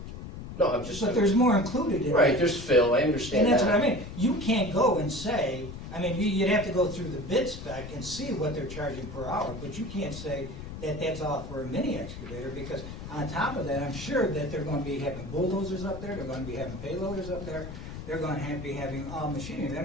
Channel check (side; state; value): left; noise; rumble, 10 dB below the sound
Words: No, I'm just. but there's more included in it. Right, there's fill, I understand And that. that's what I mean. You can't go and say, I mean, you'd have to go through the bid spec and see what they're charging per hour, but you can't say that that's all for a mini excavator, because on top of that, I'm sure that they're gonna be having bulldozers up there, they're gonna be having payloaders up there, they're gonna be having all machinery, they're